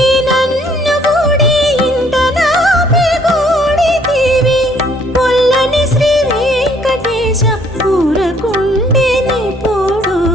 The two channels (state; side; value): normal; both; correlation 0.63